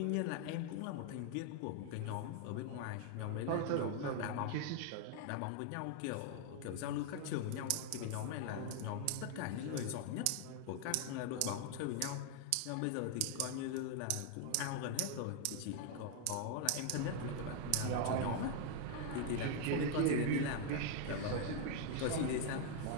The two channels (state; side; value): different; both; correlation 0.00